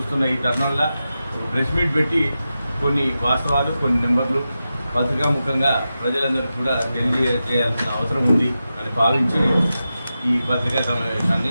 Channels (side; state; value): both; inverted; correlation -0.91